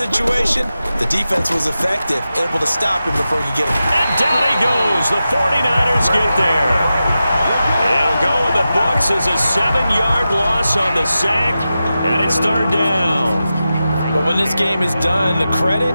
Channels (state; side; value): inverted; both; correlation -0.92